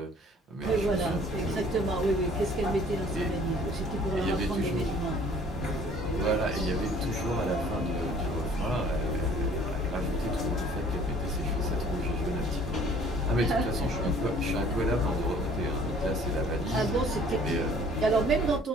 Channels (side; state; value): both; normal; correlation 0.54